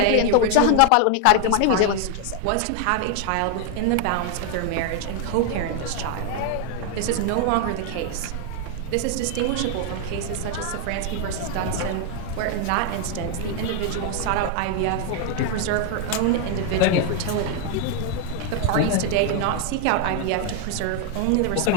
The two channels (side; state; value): both; different; correlation 0.00